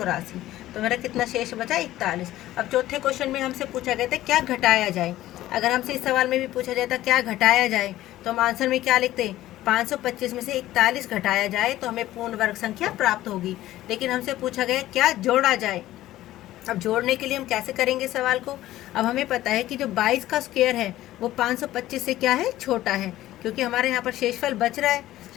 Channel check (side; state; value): right; quieter; 14.9 dB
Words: तो मेरा कितना शेष बचा 41। अब चौथे क्वेश्चन में हमसे पूछा गया था क्या घटाया जाए। अगर हमसे इस सवाल में भी पूछा जाता क्या घटाया जाए तो हम आंसर में क्या लिखते, 525 में से 41 घटाया जाए तो हमें पूर्ण वर्ग संख्या प्राप्त होगी। लेकिन हमसे पूछा गया क्या जोड़ा जाए। अब जोड़ने के लिए हम कैसे करेंगे सवाल को। अब हमें पता है कि जो 22 का स्क्वायर है वो 525 से क्या है, छोटा है, क्योंकि हमारे यहाँ पर शेषफल बच रहा है।